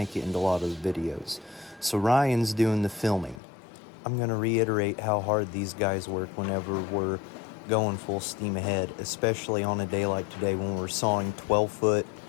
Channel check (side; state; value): right; drops out; at 3.4 s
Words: it into a lot of the videos. So Ryan's doing the filming. I'm going to reiterate how hard these guys work whenever we're going full steam ahead, especially on a day like today when we're sawing 12-foot